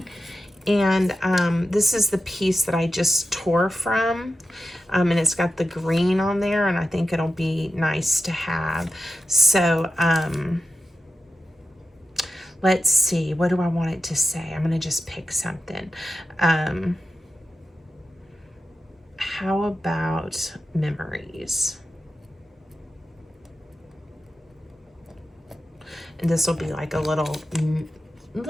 And this is the piece that I just tore from, and it's got the green on there, and I think it'll be nice to have. So let's see, what do I want it to say? I'm going to just pick something. How about memories? And this will be like a little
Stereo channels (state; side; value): normal; both; correlation 0.92